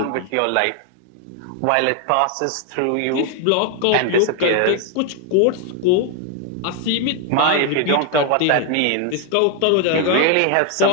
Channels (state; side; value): different; both; correlation 0.01